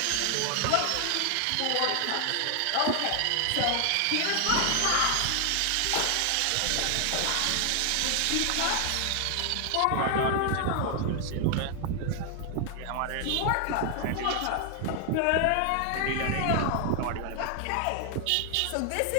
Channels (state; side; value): different; both; correlation 0.00